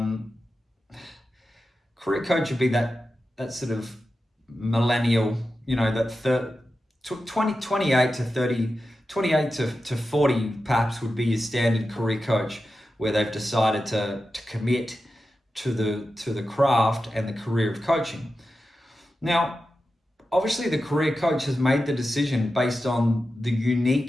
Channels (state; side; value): normal; both; correlation 0.91